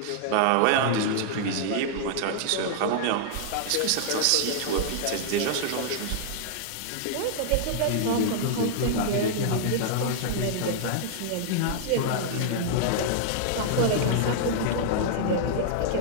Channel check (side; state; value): both; different; correlation -0.01